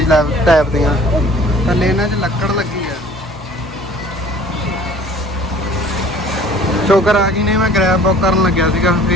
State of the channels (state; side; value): normal; both; correlation 0.50